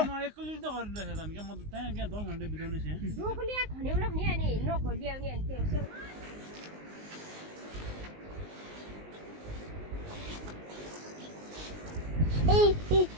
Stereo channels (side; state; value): left; late; 19 ms